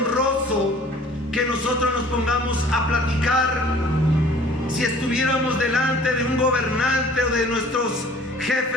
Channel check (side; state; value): both; normal; correlation 0.50